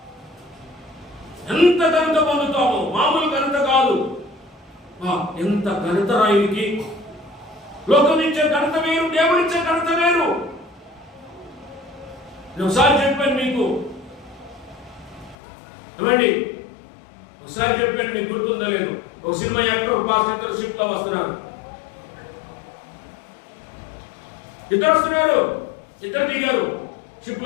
ఎంత ఘనత పొందుతామో, మామూలు ఘనత కాదు. ఎంత ఘనత రాయుడికి. లోకం ఇచ్చే ఘనత వేరు, దేవుడిచ్చే ఘనత వేరు. నేను ఒకసారి చెప్పాను మీకు, ఏమండి ఒకసారి చెప్పాను, మీకు గుర్తుందో లేదు. ఒక సినిమా యాక్టర్, ఒక పాస్టర్ షిప్ లో వస్తున్నారు. ఇద్దరు వస్తున్నారు, ఇద్దరు దిగారు షిప్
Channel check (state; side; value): drops out; right; at 15.4 s